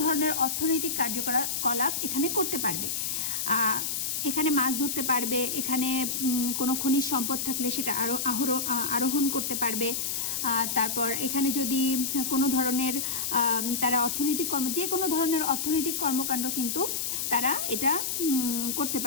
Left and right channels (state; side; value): noise; left; hiss, 1 dB below the sound